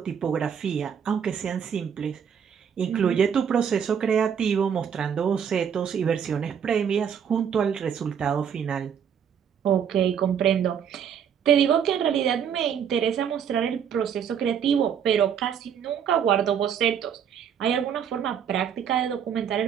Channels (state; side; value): quieter; left; 8.0 dB